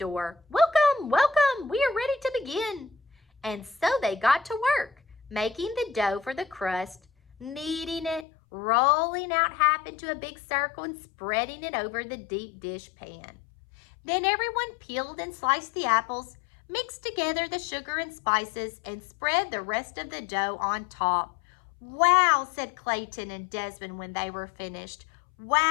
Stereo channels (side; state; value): right; drops out; at 8.2 s